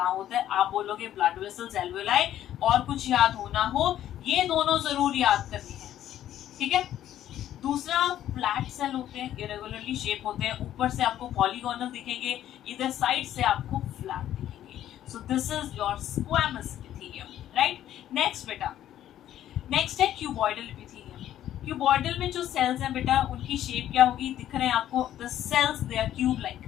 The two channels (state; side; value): quieter; right; 11.9 dB